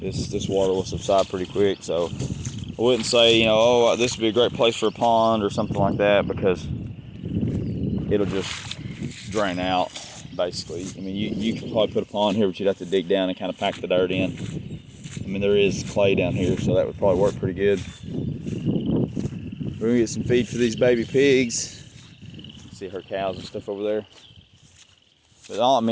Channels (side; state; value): both; identical; correlation 1.00